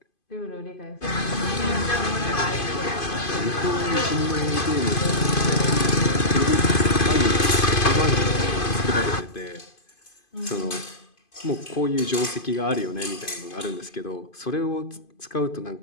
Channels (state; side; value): late; right; 2.5 ms